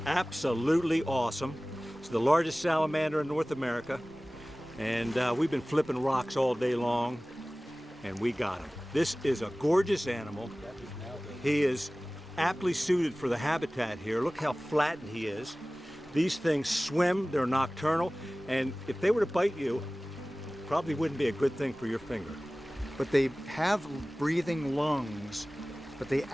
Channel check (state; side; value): normal; both; correlation 0.98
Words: absolutely awesome. It's the largest salamander in North America, and we've been flipping rocks all day long, and we got him. This is a gorgeous animal. He is aptly suited for the habitat here. Look how flattened he is. These things swim, they're nocturnal, and if they were to bite you, probably wouldn't be a good thing for your finger. But they have breathing lungs, but they